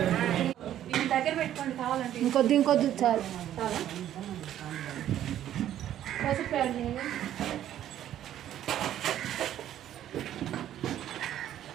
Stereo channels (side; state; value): left; quieter; 11.6 dB